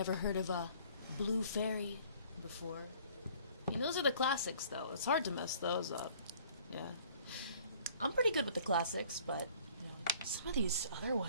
heard of a Blue Fairy before. I mean, those are the classics, though. It's hard to mess those up. Yeah. I'm pretty good with the classics, but, you know, some of these other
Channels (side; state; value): both; inverted; correlation -0.54